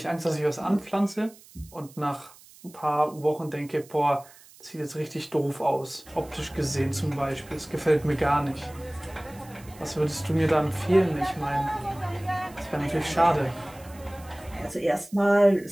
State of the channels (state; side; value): noise; right; hiss, 23 dB below the sound